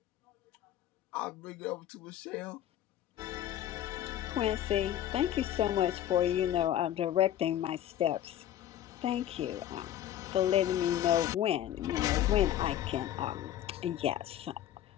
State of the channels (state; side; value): quieter; right; 11.8 dB